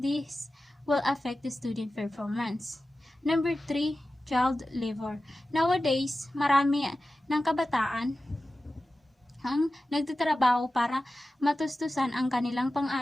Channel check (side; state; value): both; normal; correlation 0.94